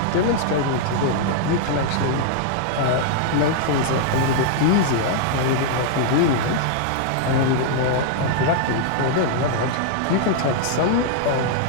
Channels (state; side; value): different; both; correlation -0.01